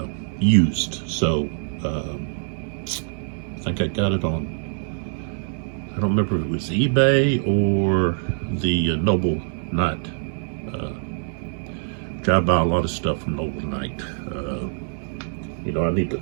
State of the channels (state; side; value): silent; left; 63 dB below the other